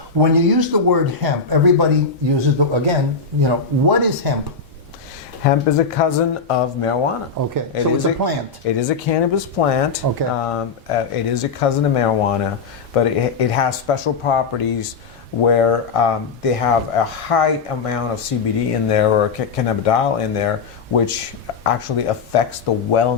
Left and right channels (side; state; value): right; quieter; 5.0 dB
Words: when you use the word hemp, everybody uses what is hemp? Hemp is a cousin of marijuana. Okay, so it's a plant. It is a cannabis plant. Okay. It is a cousin of marijuana, but it has special properties where they have a high amount of CBD in there, or cannabidiol in there, which actually affects the